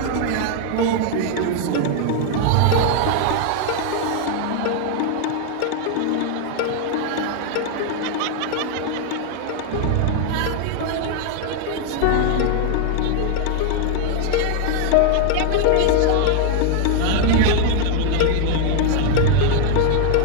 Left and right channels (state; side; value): different; both; correlation 0.00